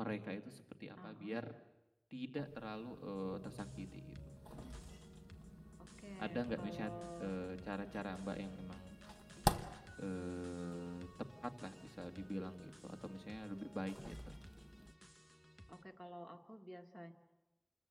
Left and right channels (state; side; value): identical; both; correlation 1.00